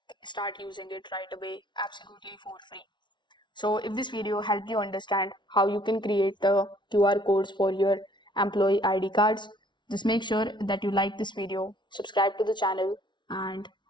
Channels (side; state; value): right; late; 0.23 ms